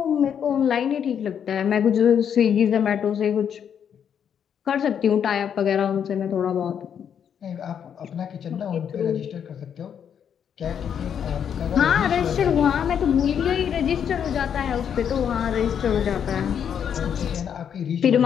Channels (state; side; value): quieter; right; 8.3 dB